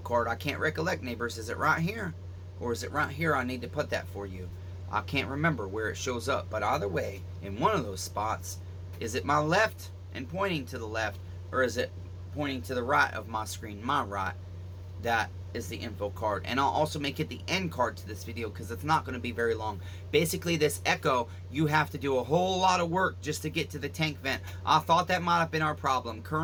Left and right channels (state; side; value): identical; both; correlation 1.00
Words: I can't recollect, neighbors. Is it right here? Or is it right here? I need to put that for you. I can't remember where it shows up, but either way, in one of those spots, is it my left and pointing to the left, or is it pointing to the right of my screen, my right? That is the info card. And I'll also make it the end card to this video because it's not going to be very long. Basically, this Echo, you have to do a whole lot of work just to get to the tank vent. I thought that might have been our problem.